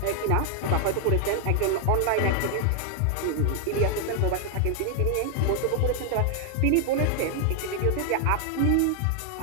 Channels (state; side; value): different; both; correlation 0.00